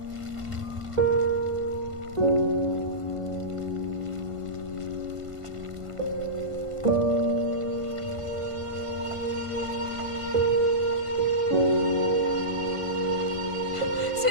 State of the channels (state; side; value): late; left; 1.5 ms